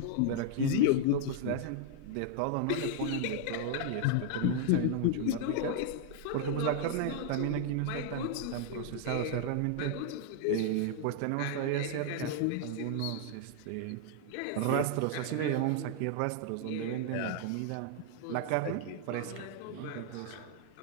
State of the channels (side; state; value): both; different; correlation 0.00